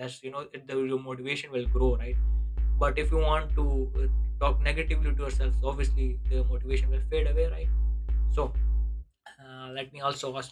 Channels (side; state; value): both; identical; correlation 1.00